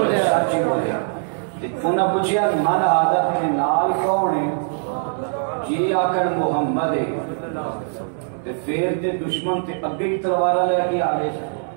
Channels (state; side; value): silent; left; digital silence